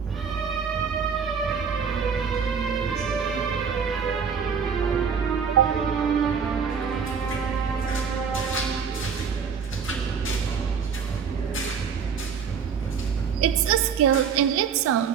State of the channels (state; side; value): quieter; left; 6.5 dB